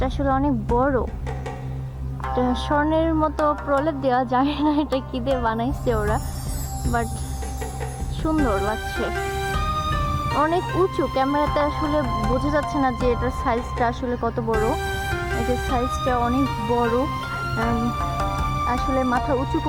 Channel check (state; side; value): identical; both; correlation 1.00